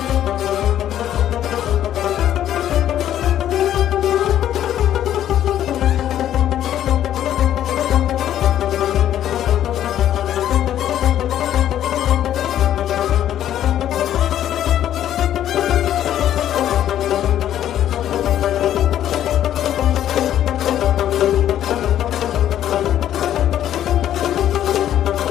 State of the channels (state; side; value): quieter; right; 11.3 dB